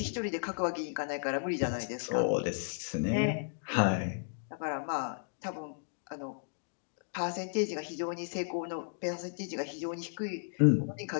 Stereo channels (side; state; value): right; silent; digital silence